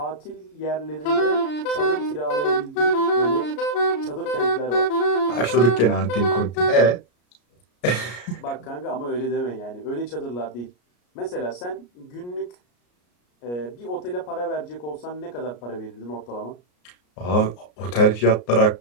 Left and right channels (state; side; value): late; right; 33 ms